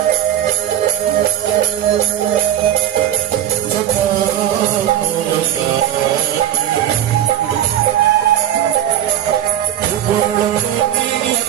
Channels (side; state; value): left; quieter; 11.2 dB